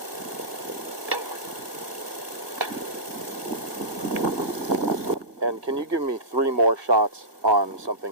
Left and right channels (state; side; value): late; left; 1.6 ms